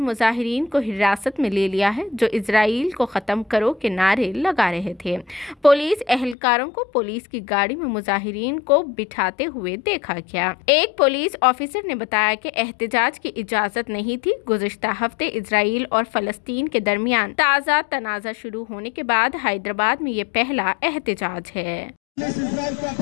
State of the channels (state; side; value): drops out; right; at 6.4 s